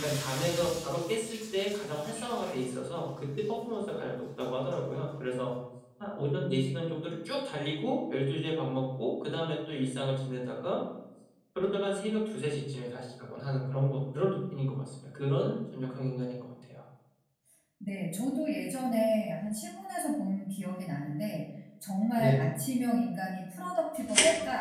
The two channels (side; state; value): both; identical; correlation 1.00